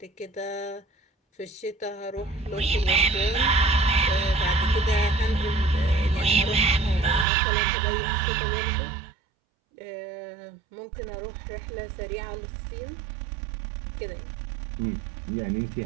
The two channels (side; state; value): left; drops out; at 7.2 s